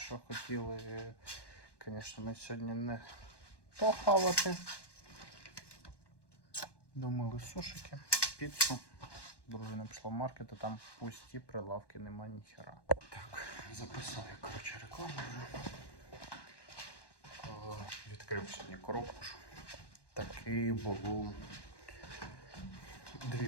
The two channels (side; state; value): right; late; 1.1 ms